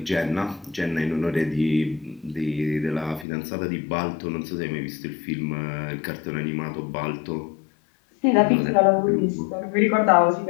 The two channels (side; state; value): right; drops out; at 3.2 s